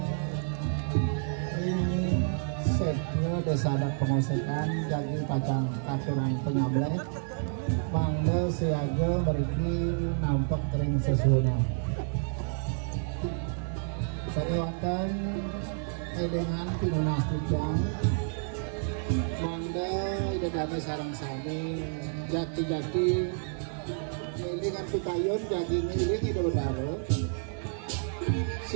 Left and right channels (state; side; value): silent; left; 58 dB below the other